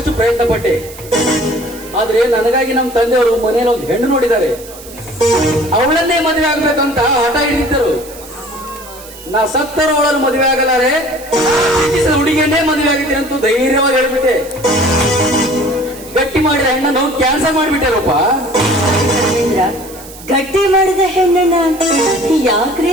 ಪ್ರಯತ್ನ ಪಟ್ಟೆ. ಆದ್ರೆ ನನಗಾಗಿ ನಮ್ಮ ತಂದೆಯವರು ಮನೆಯಲ್ಲಿ ಒಂದು ಹೆಣ್ಣು ನೋಡಿದ್ದಾರೆ. ಅವಳನ್ನೇ ಮದುವೆ ಆಗ್ಬೇಕಂತ ಹಠ ಹಿಡಿದಿದ್ದರು. ನಾ ಸತ್ತರು ಅವಳನ್ನು ಮದುವೆ ಆಗಲಾರೆ, ಹುಡುಗಿಯನ್ನೇ ಮದುವೆ ಆಗಿದ್ದೀನಿ ಅಂತ ಧೈರ್ಯವಾಗಿ ಹೇಳ್ಬಿಟ್ಟೆ. ಗಟ್ಟಿ ಮಾಡಿದ ಹೆಣ್ಣನ್ನು ಕ್ಯಾನ್ಸಲ್ ಮಾಡಿಬಿಟ್ಟೆ ರೂಪ. ಗಟ್ಟಿ ಮಾಡಿದ ಹೆಣ್ಣನ್ನ ಯಾಕ್ರಿ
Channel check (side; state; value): right; noise; hiss, 18 dB below the sound